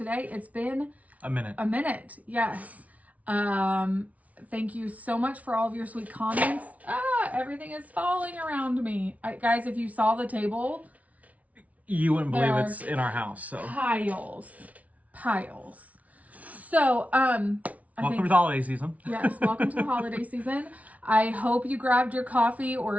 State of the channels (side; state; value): left; late; 0.069 ms